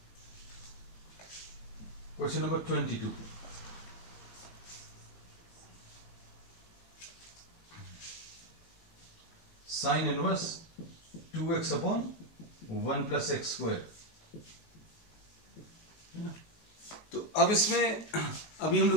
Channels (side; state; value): right; late; 19 ms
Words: Question number 22, sine inverse 2x upon 1 plus x square. तो अब इसमें अभी हम